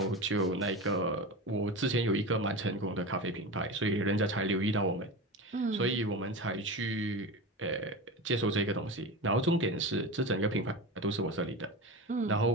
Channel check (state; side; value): normal; both; correlation 0.25